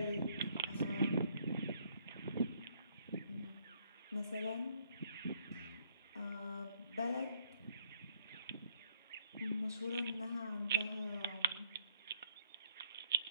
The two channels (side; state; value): both; inverted; correlation -0.67